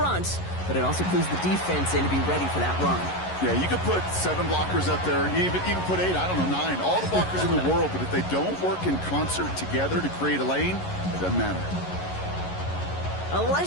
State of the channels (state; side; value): late; right; 11 ms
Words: but it also clues the defense in to be ready for that run. Yeah, you could put 7 blockers up there, even put 8, I don't know, 9, all the blockers in the world, but if they don't work in concert together to create a lane, it doesn't matter. A